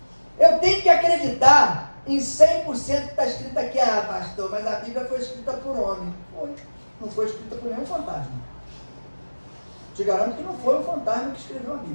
Eu tenho que acreditar em 100% que está escrito aqui, pastor, mas a Bíblia foi escrita por homem. Foi. Não foi escrita por nenhum fantasma. Te garanto que não foi um fantasma que escreveu a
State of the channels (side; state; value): both; inverted; correlation -1.00